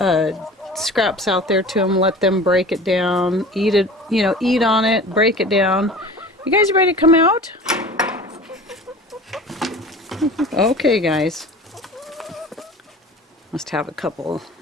scraps out there to them, let them break it down, eat it, you know, eat on it, break it down. You guys ready to come out? Okay, guys. Must have a couple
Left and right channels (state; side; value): normal; both; correlation 0.40